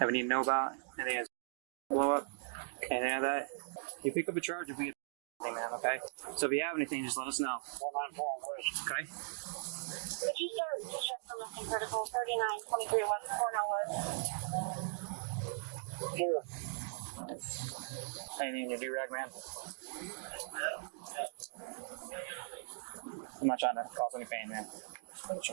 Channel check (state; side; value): silent; left; digital silence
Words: any to know about? Anything that's blow up? Anything like that? You pick up a charge if we get anything, man, okay? So if you have anything, just let us know. 194, okay? Would you start to check for missing critical 3923 West Cornell? Here. Anything in your do-rag, man? I'm not trying to cause any pain, man. Just make sure